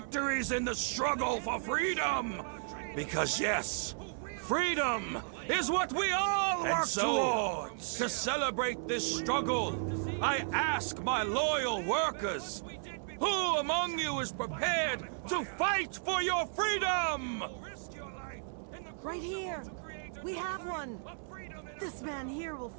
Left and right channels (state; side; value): silent; left; 55 dB below the other